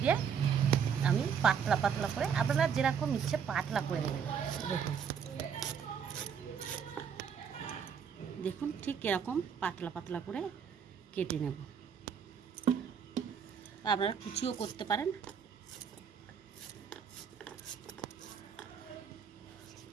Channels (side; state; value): left; quieter; 7.1 dB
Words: দিয়ে আমি পাতলা পাতলা করে, আপনারা যেরকম ইচ্ছে পাতলা করে নেবেন। দেখুন ঠিক এরকম পাতলা পাতলা করে কেটে নেব। আপনারা কুচিও করতে পারেন।